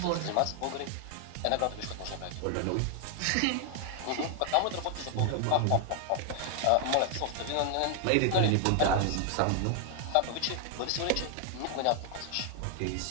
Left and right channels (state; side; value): different; both; correlation 0.00